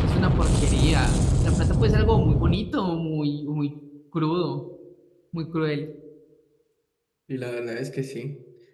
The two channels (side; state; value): both; identical; correlation 1.00